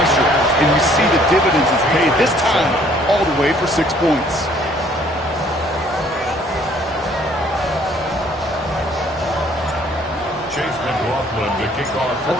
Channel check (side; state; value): both; normal; correlation 0.60